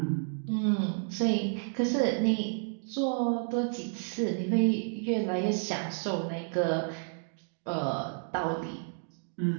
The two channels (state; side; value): silent; left; 57 dB below the other